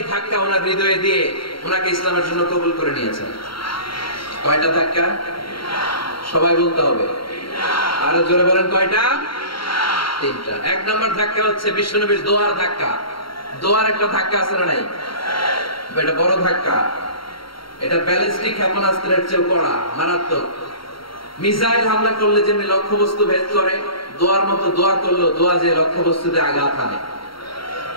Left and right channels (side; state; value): right; late; 0.74 ms